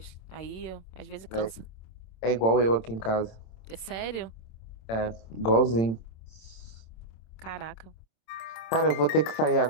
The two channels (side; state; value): right; late; 27 ms